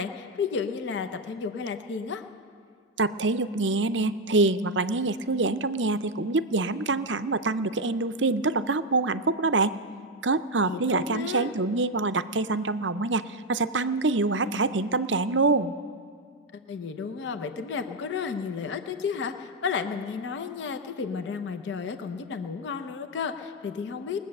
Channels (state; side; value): normal; both; correlation 0.05